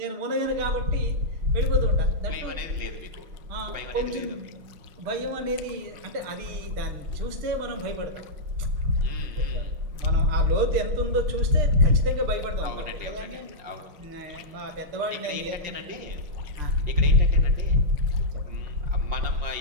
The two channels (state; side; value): late; left; 6.7 ms